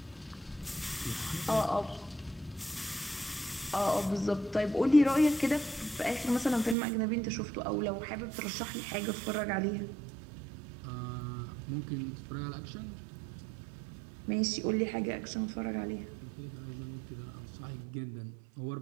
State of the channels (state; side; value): drops out; left; at 6.8 s